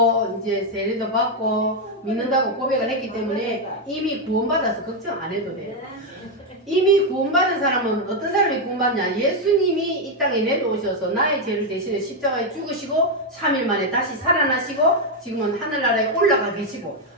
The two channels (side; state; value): both; normal; correlation 0.03